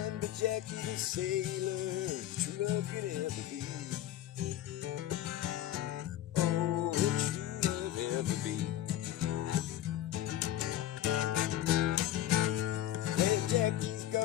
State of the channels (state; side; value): quieter; right; 12.6 dB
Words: but Jackie the sailor, the true love could ever be. Oh, what true love ever be. When Jackie's